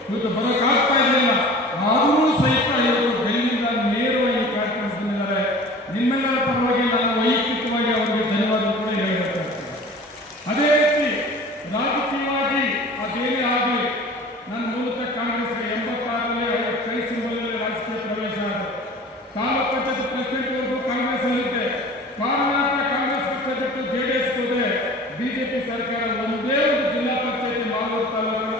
ಇವತ್ತು ಬರೋಕ್ಕಾಗ್ತಾ ಇರಲಿಲ್ಲ. ಆದರೂ ಸಹಿತ ಇವತ್ತು ಡೆಲ್ಲಿಯಿಂದ ನೇರವಾಗಿ ಈ ಕಾರ್ಯಕ್ರಮ ಬಂದಿದ್ದಾರೆ. ನಿಮ್ಮೆಲ್ಲರ ಪರವಾಗಿ ನಾನು ವೈಯಕ್ತಿಕವಾಗಿ ಅವರಿಗೆ ಧನ್ಯವಾದ ಕೂಡ ಹೇಳಬೇಕಾಗ್ತದೆ. ಅದೇ ರೀತಿ ರಾಜಕೀಯವಾಗಿ ಅದೇನೇ ಆಗಲಿ ನನ್ನ ಮೂಲತಃ ಕಾಂಗ್ರೆಸ್ಗೆ 86ರಲ್ಲಿ ಅವರ ಕೈ ಸಿಂಬಲಲ್ಲಿ ರಾಜಕೀಯ ಪ್ರವೇಶ ಆಗಿದೆ. ತಾಲೂಕು ಪಂಚಾಯತ್ ಪ್ರೆಸಿಡೆಂಟ್ವರೆಗೂ ಕಾಂಗ್ರೆಸ್ ಅಲ್ಲಿದ್ದೆ. ಕಾರಣಾಂತರ ಕಾಂಗ್ರೆಸ್ ಪಕ್ಷ ಬಿಟ್ಟು JDS ಹೋದೆ. ಬಿಜೆಪಿ ಸರ್ಕಾರ ಒಂದೇ ಒಂದು ಜಿಲ್ಲಾ ಪಂಚಾಯತ್ ಮಾಲೂರು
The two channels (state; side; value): normal; both; correlation 0.42